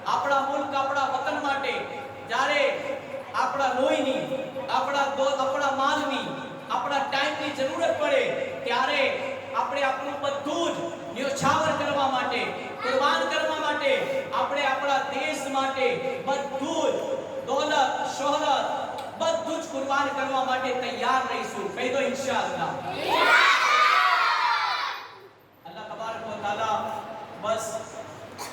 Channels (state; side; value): identical; both; correlation 1.00